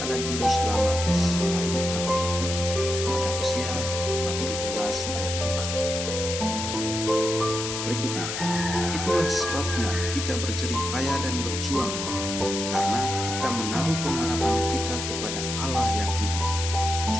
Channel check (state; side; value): noise; left; hiss, 4 dB below the sound